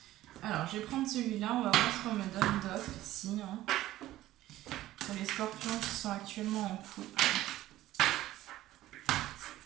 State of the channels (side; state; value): left; quieter; 15.1 dB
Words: Alors je vais prendre celui-là, on va voir ce qu'on me donne d'autre ici hein, pour les scorpions qui sont actuellement en couple.